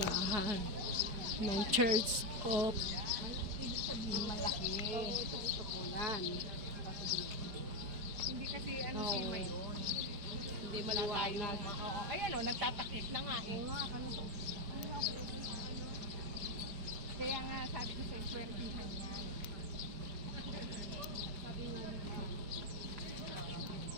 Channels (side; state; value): left; late; 4.8 ms